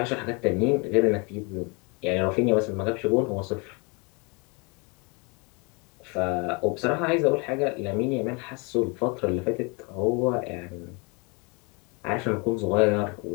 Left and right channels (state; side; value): quieter; right; 31.1 dB